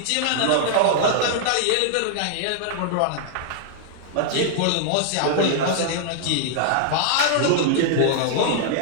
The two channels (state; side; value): different; both; correlation -0.01